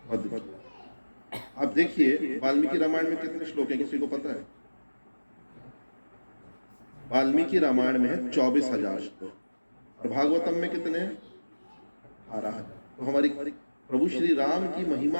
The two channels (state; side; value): inverted; both; correlation -1.00